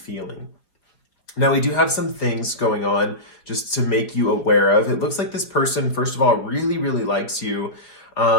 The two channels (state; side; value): late; right; 5.0 ms